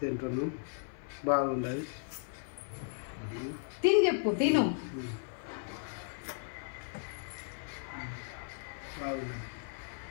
బాగుండదు. తిని చెప్పు. తిను. బాగున్నది.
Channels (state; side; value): silent; right; 54 dB below the other